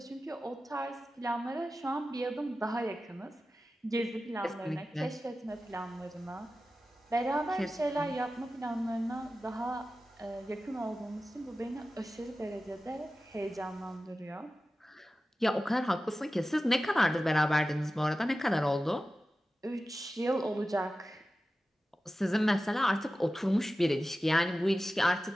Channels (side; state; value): both; normal; correlation 0.94